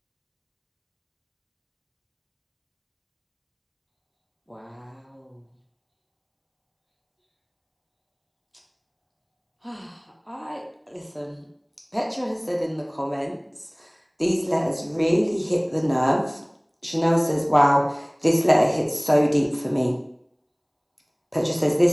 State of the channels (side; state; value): both; identical; correlation 1.00